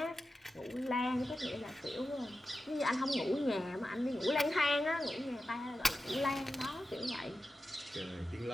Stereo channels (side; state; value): both; normal; correlation 0.92